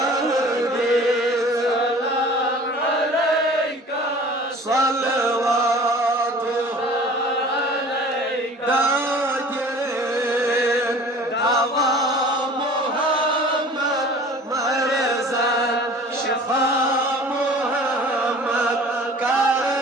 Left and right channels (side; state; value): both; normal; correlation 0.45